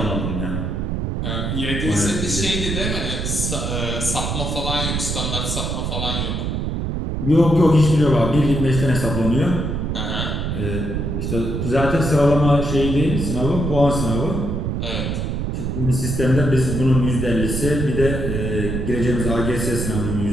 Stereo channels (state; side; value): noise; right; rumble, 2 dB below the sound